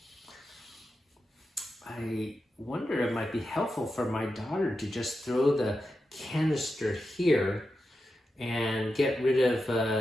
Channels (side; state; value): both; normal; correlation 0.90